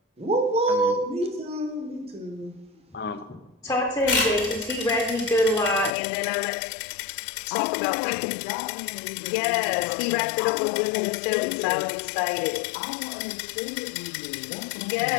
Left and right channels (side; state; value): right; drops out; at 5.9 s